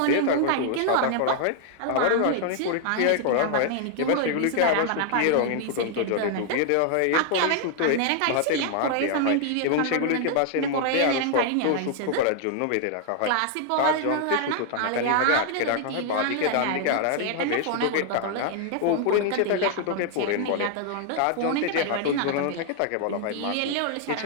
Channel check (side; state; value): both; different; correlation 0.00